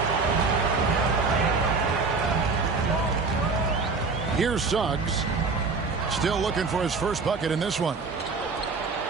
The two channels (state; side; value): quieter; left; 4.3 dB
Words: Here's Suggs. Still looking for his first bucket in this one.